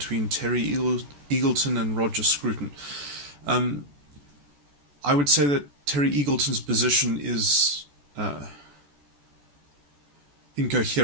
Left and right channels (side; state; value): left; late; 14 ms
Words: Terry Eagleton and Roger Scrurin. Um, I would say that Terry Eagleton's position is